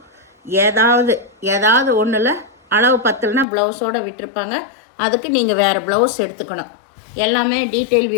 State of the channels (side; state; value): right; drops out; at 3.5 s